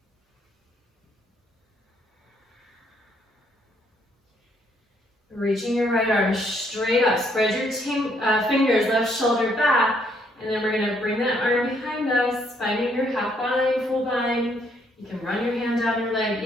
Reaching your right arm straight up. Spread your fingers, left shoulder back. And then we're going to bring that arm behind us, finding your half bind, full bind. You can run your hand down your leg.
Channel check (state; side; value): normal; both; correlation 0.69